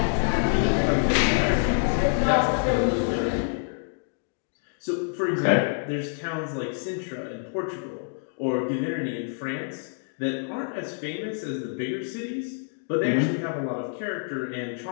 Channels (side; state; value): right; silent; digital silence